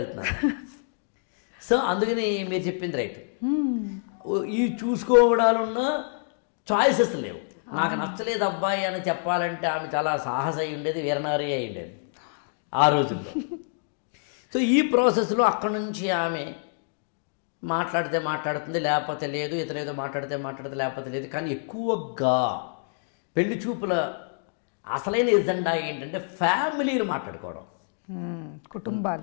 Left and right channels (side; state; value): right; silent; digital silence